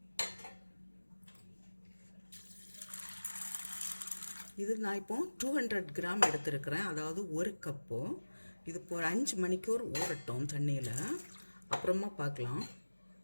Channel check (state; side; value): inverted; both; correlation -1.00